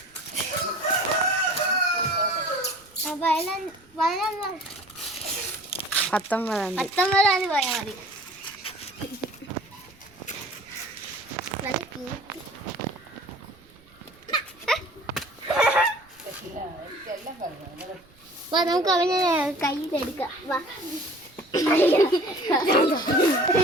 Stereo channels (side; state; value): right; noise; rumble, 29 dB below the sound